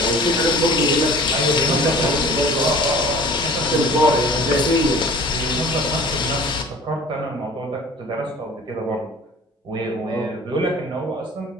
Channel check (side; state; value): both; normal; correlation 0.45